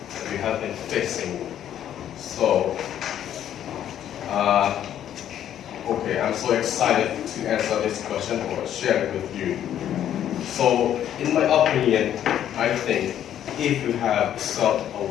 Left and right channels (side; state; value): right; quieter; 10.6 dB